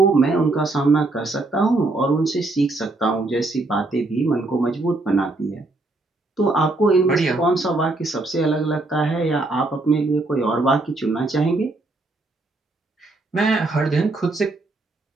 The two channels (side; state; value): left; quieter; 3.1 dB